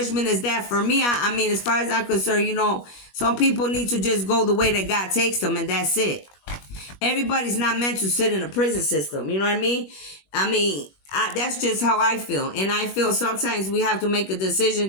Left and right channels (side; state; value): right; late; 21 ms